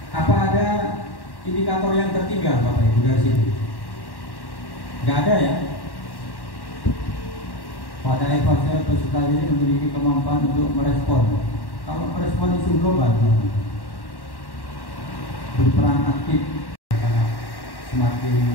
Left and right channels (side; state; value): right; late; 1.1 ms